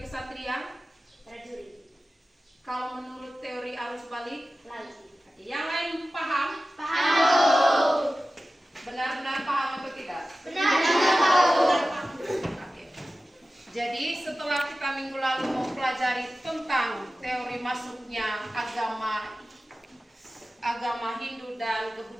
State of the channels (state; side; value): normal; both; correlation 0.96